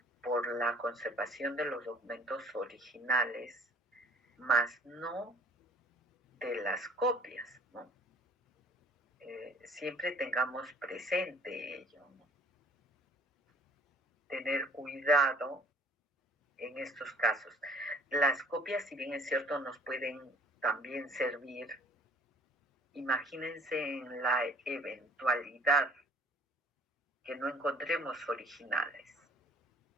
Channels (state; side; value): normal; both; correlation 0.56